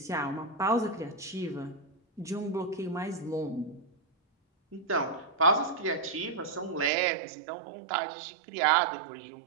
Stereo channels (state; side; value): drops out; left; at 6.9 s